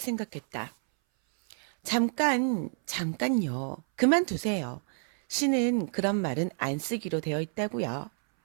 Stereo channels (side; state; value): left; silent; 59 dB below the other